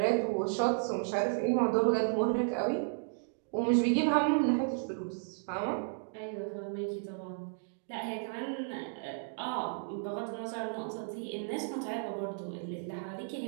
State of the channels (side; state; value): left; silent; digital silence